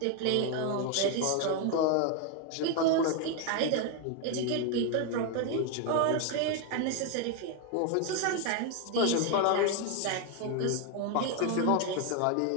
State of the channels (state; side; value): different; both; correlation 0.01